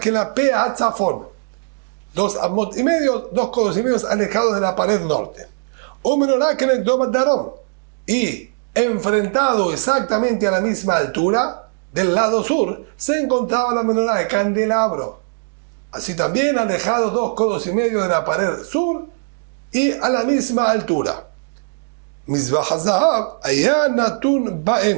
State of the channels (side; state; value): left; silent; digital silence